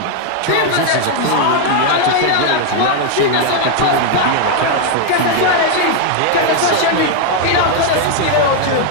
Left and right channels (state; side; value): different; both; correlation 0.00